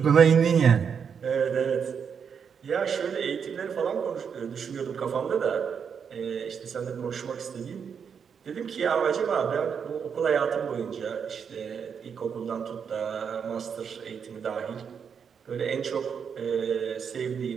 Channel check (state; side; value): quieter; left; 6.9 dB